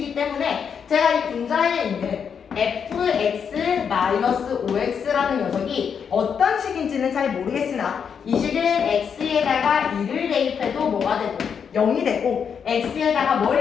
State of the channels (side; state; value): right; quieter; 7.0 dB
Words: 때문에 제가 이 분자에 있는 fx-5x라는 녀석이 어떤 식인지는 잘 모르겠으나 이 식은 x에다가 2를 대입해도 뭐가 되고 0이 되고 x에다가